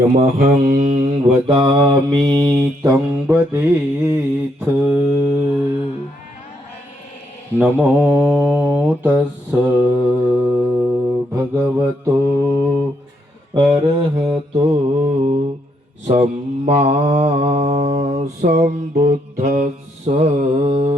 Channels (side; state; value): both; normal; correlation 0.75